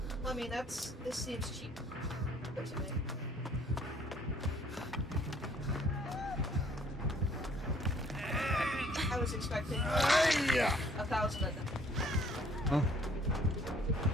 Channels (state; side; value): normal; both; correlation 0.59